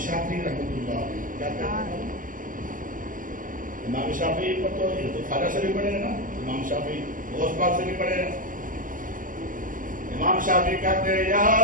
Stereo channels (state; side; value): late; left; 0.39 ms